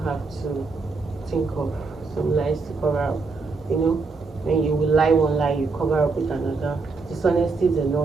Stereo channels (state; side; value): quieter; left; 4.1 dB